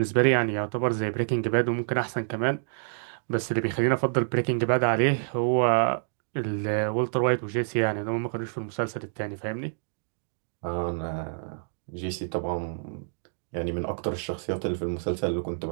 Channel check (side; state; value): left; silent; digital silence